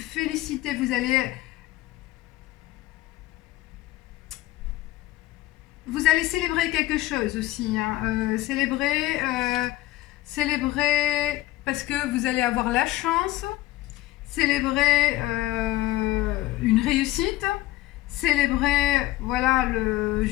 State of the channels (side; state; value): right; quieter; 16.4 dB